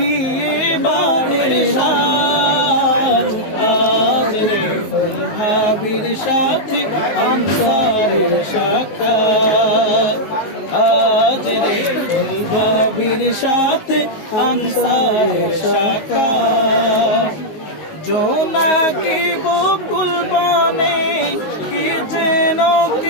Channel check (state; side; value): late; right; 19 ms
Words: বাড়ির সাজ আজ রে ফুল ভাবির সাথে আনসারের শাখা আজ রে ফুল ভাবির সাথে আনসারের শাখা জোনাকি বকুল বনে কি যেন